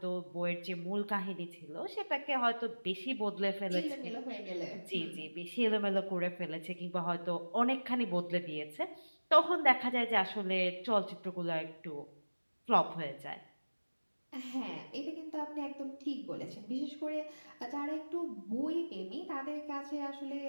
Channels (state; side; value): inverted; both; correlation -1.00